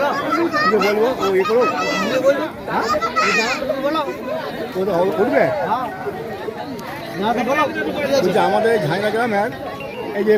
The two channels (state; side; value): identical; both; correlation 1.00